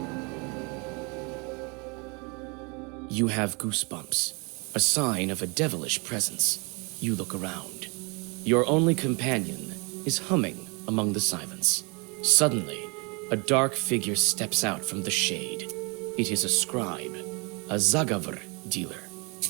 You have goosebumps, a sign of a devilish presence. You look around. Your only companion is humming among the silence. Suddenly, a dark figure steps out from the shade. It is a scribe, a Zagavr dealer.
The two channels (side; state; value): left; quieter; 30.7 dB